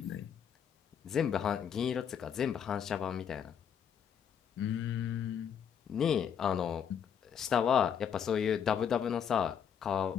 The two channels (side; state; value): right; quieter; 8.1 dB